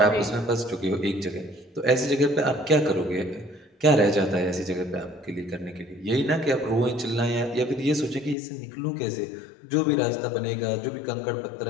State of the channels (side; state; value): right; drops out; at 8.3 s